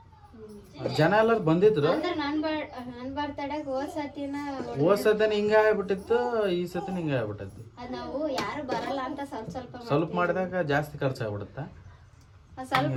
ಜನ ಎಲ್ಲರೂ ಬಂದಿದ್ರು. ಅಂದ್ರೆ ನನ್ ಬರ್ತಡೆಗೆ ಹೋದ್ ಸತಿನ ಹಿಂಗ ಆಗ್ಬಿಟ್ಟಿತ್ತು, ಈ ಸತಿನ ಹಿಂಗ ಆಗ್ಬಿಟ್ಟೈತಿ. ಅದ್ ನಾವು ಯಾರು ಬರಲ್ಲ ಅಂತ ಸ್ವಲ್ಪ ಮಾಡಿದಾಗ ಜಾಸ್ತಿ ಖರ್ಚಾಗ್ಬಿಡುತ್ತೆ. ಸ್ವಲ್ಪ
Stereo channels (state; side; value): identical; both; correlation 1.00